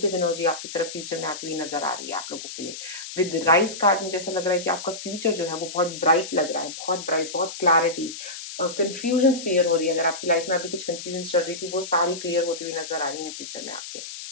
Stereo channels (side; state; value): left; noise; hiss, 10 dB below the sound